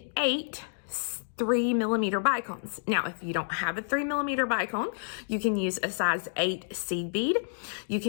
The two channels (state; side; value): silent; right; digital silence